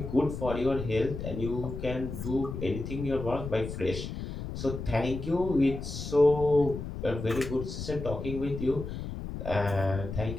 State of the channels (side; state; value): left; noise; rumble, 7 dB below the sound